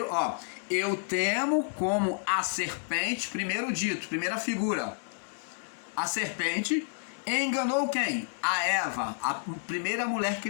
ó. Eu temo como a serpente, primeiro dito, primeira figura. A serpente enganou quem? A Eva, a primeira mulher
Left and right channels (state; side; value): silent; right; digital silence